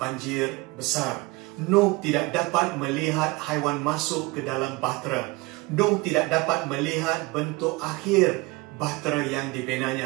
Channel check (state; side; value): quieter; left; 23.6 dB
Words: besar. Nuh tidak dapat melihat haiwan masuk ke dalam bahtera. Nuh tidak dapat melihat bentuk akhir bahtera yang